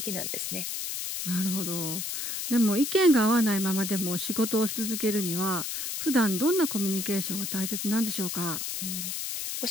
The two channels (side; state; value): left; noise; hiss, 4 dB below the sound